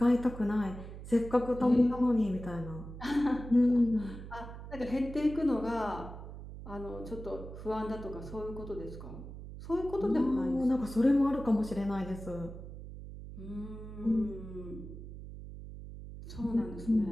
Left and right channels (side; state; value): right; noise; hum, 12 dB below the sound